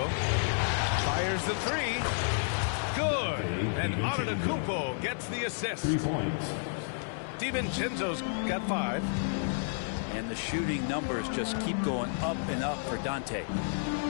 Fires the 3. Good. And Antetokounmpo gets the assist. 3 points. DiVincenzo's got 5. And the shooting numbers just keep going up and up for Dante.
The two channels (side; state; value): right; silent; 57 dB below the other